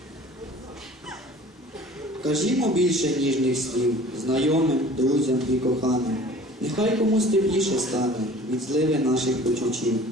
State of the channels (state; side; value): normal; both; correlation 0.46